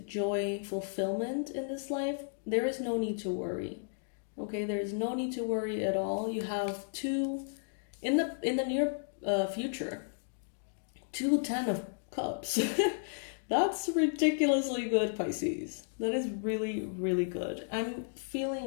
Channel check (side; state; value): right; silent; digital silence